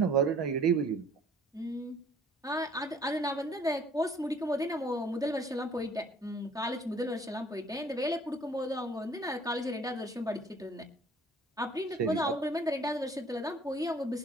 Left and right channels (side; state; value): both; normal; correlation 0.56